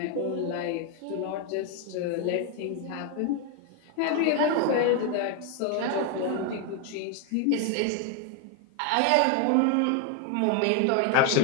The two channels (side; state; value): both; different; correlation 0.01